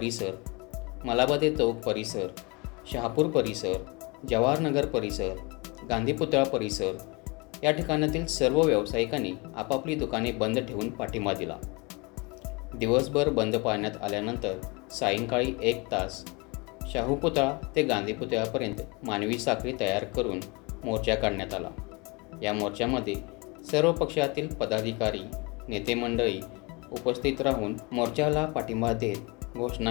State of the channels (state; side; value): quieter; right; 28.1 dB